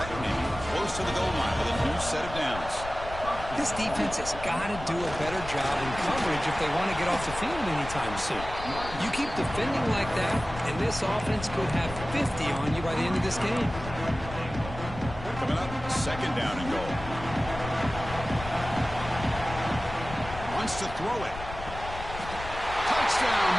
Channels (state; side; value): noise; left; rumble, 11 dB below the sound